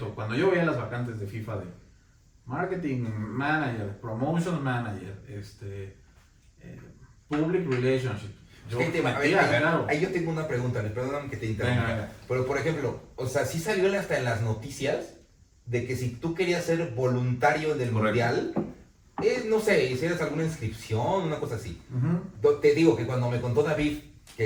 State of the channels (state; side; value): identical; both; correlation 1.00